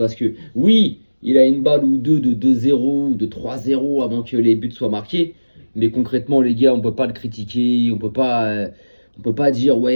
que oui, il a une balle ou deux de 2-0 ou de 3-0 avant que les buts soient marqués. Mais concrètement, les gars, on peut pas le critiquer. On peut pas dire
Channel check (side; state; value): both; inverted; correlation -1.00